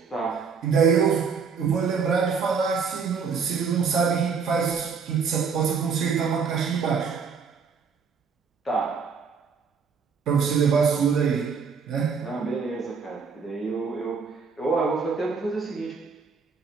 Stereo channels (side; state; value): left; quieter; 5.8 dB